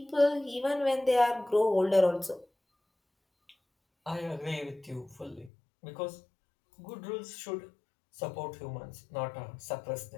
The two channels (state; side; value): drops out; right; at 5.5 s